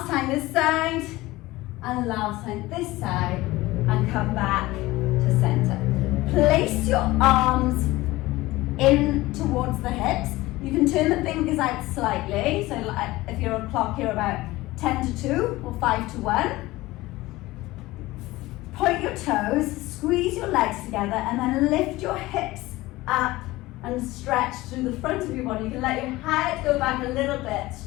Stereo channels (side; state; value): right; quieter; 18.9 dB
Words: time this side and last time this side, and come back to center. Place your arms in towards the hips. You can turn the fingers out slightly. So if you're on clock, you're about 10 to 2 or 5 to 1. Point your toes, squeeze your legs together, and then lift your hips up and stretch through the front of your body. You can let your head go back a little bit,